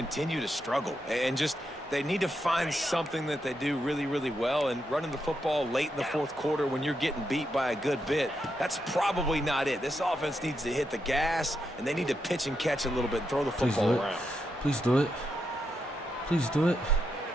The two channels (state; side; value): normal; both; correlation 0.83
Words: to struggle. And just, they need to find something that they do really, really well. And running the football late in the 4th quarter when you're getting beat by a good bit, that's probably not it. This offense needs to hit the gas, and they need to pitch and catch a little bit, throw the football around. Please do it. Please do it.